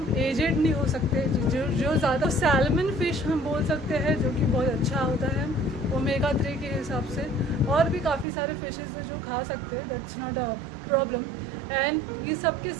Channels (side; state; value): left; drops out; at 8.2 s